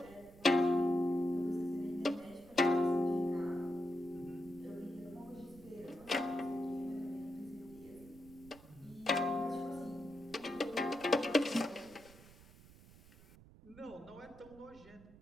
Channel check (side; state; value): right; noise; rumble, 22 dB below the sound